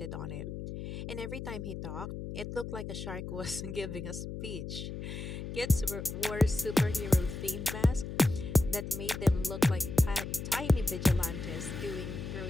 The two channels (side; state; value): left; noise; hum, 7 dB below the sound